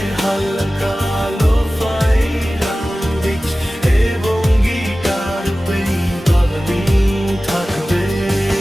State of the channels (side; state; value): both; normal; correlation 0.96